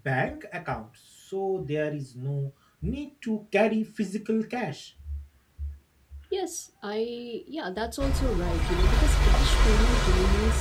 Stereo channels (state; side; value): identical; both; correlation 1.00